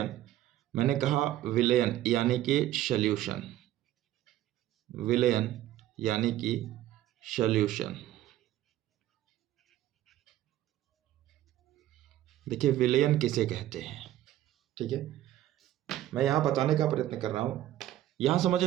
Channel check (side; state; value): left; quieter; 13.7 dB